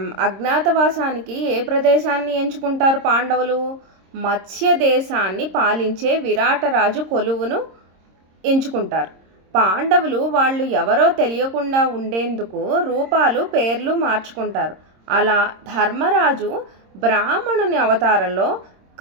అజ్ఞాతవాసానికి ఏ ప్రదేశాన్ని ఎంచుకుంటారు పాండవులు? మత్స్య దేశాన్ని పాలించే విరాటరాజు కొలువును ఎంచుకుంటారు. పాండవులు వాళ్ళు ఎవరో తెలియకుండా ఉండేందుకు రూపాలు పేర్లు మార్చుకుంటారు. అలా ధర్మరాజు బ్రాహ్మణుని అవతారంలో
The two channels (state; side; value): late; left; 26 ms